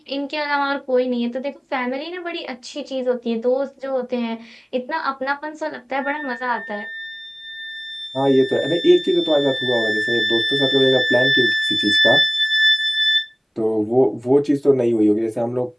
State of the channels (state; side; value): identical; both; correlation 1.00